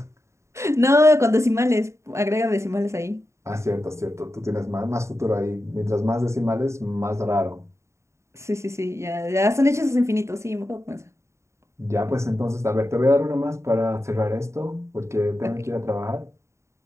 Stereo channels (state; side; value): late; left; 0.14 ms